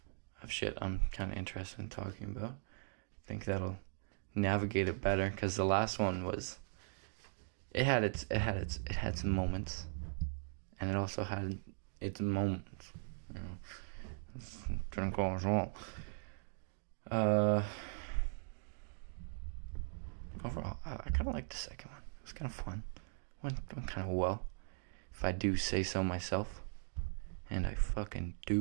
of shit I'm kind of interested in talking about. I think that'll navigate it better, because the last one was, it had some moments, and it also had its moments. Didn't go as well. Overall, I kind of liked the second one. It was kind of fun. Went kind of well, if I do say so myself, and I fucking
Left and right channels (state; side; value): silent; left; digital silence